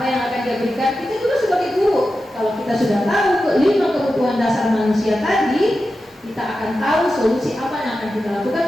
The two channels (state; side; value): normal; both; correlation 0.91